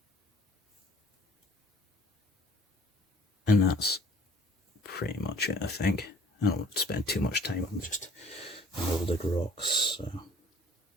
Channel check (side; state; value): both; normal; correlation 0.54